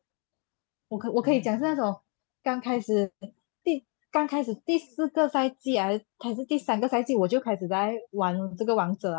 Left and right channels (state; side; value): quieter; right; 36.4 dB